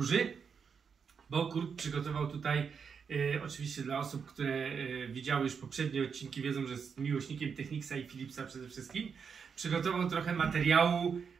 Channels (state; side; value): quieter; left; 6.3 dB